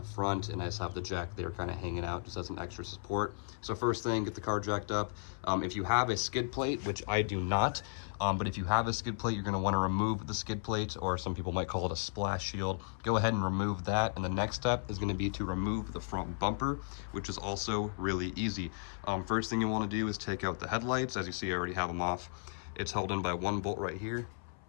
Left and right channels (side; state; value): right; silent; 55 dB below the other